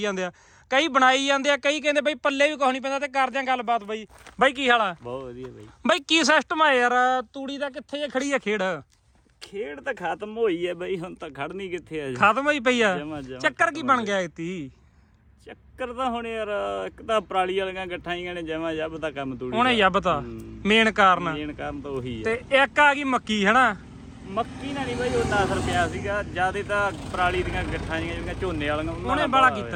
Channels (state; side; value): identical; both; correlation 1.00